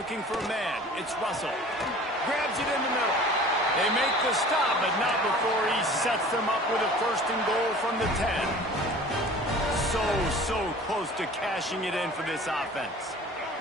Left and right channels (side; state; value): both; normal; correlation 0.44